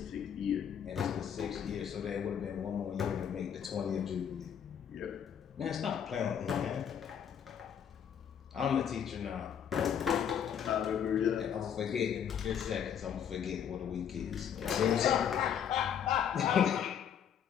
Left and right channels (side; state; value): right; quieter; 8.5 dB